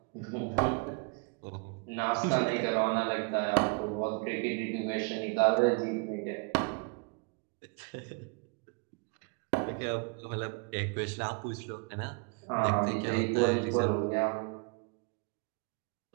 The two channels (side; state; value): left; quieter; 33.1 dB